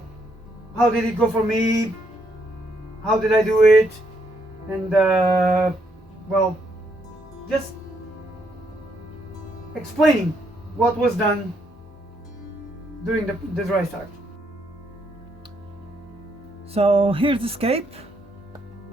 did it go for me? How did I do it? And well, just explaining what was done during the dry start. So here's the scape.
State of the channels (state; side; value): normal; both; correlation 0.74